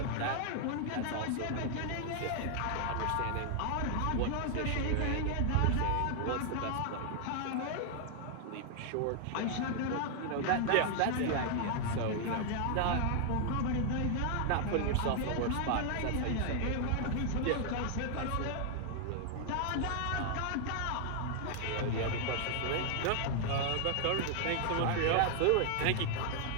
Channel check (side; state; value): both; different; correlation 0.00